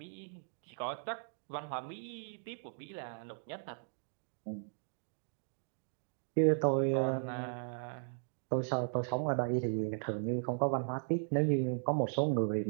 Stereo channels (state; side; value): silent; left; digital silence